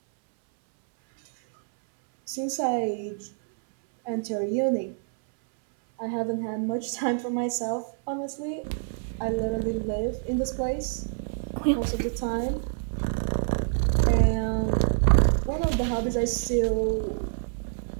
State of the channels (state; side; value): silent; left; 60 dB below the other